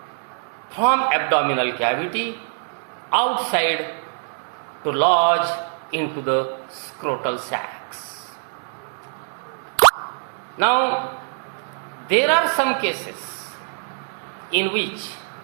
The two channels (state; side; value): silent; left; 62 dB below the other